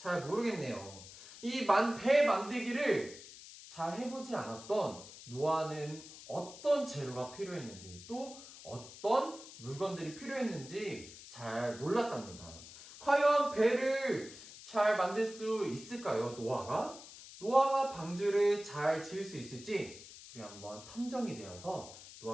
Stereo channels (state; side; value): noise; left; hiss, 16 dB below the sound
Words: 모르겠네요. 이 배 만들기를 잘 해보지 않았던 노아는 어떤 재료가 필요했는지 또 어떤 물건들이 필요했는지 잘 몰랐답니다. 과연 배를 잘 만들 수 있을까요, 노아가? 노아가 방주를 잘 지을 수 있을지 우리 한번 탐정이 되어서